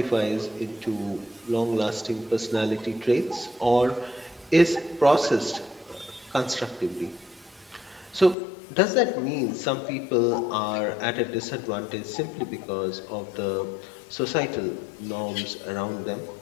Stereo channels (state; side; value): drops out; right; at 8.3 s